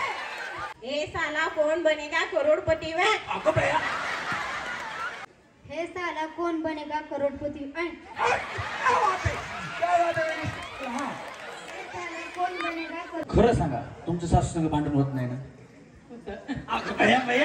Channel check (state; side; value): identical; both; correlation 1.00